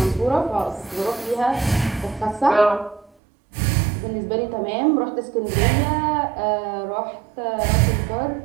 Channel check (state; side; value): drops out; left; at 3.1 s